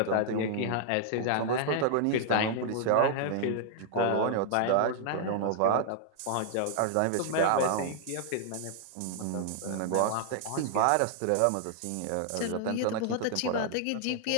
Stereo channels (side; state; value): both; different; correlation -0.01